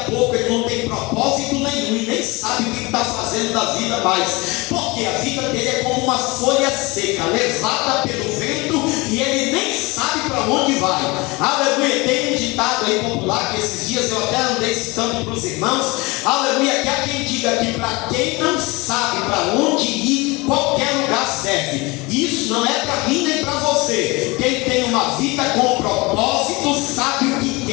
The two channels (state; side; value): quieter; right; 24.5 dB